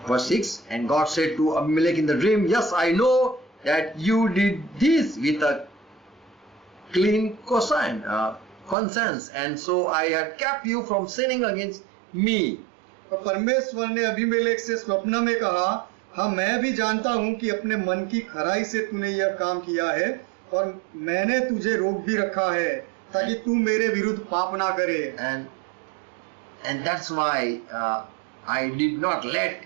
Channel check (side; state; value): left; drops out; at 8.8 s